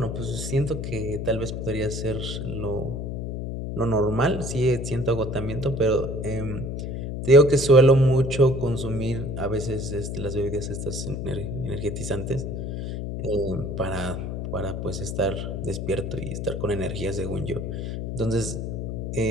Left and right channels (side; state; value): left; noise; hum, 4 dB below the sound